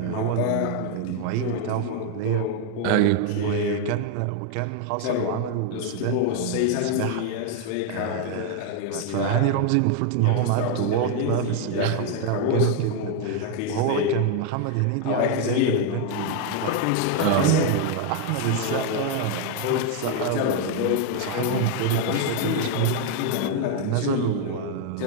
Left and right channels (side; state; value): both; different; correlation 0.00